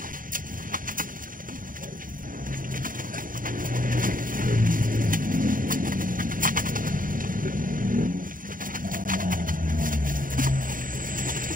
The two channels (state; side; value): late; left; 0.40 ms